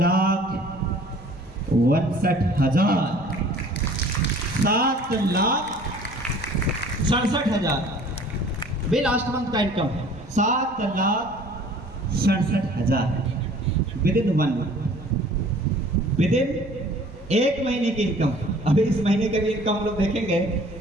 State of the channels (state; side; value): normal; both; correlation 0.51